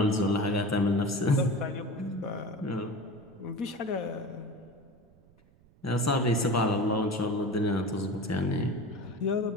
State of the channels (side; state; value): right; noise; rumble, 29 dB below the sound